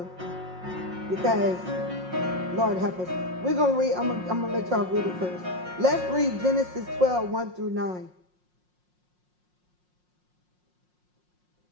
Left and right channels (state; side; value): late; left; 5.6 ms